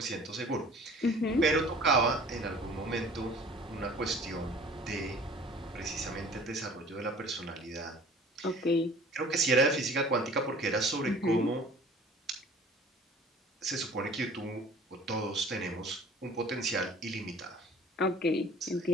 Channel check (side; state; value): both; normal; correlation 0.48